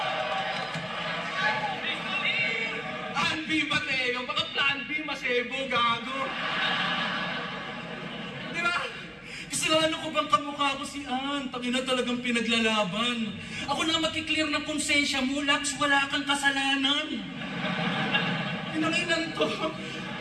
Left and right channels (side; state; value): both; identical; correlation 1.00